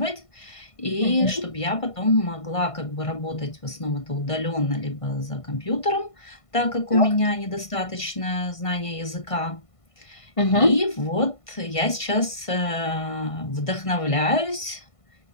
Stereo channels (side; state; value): right; late; 1.5 ms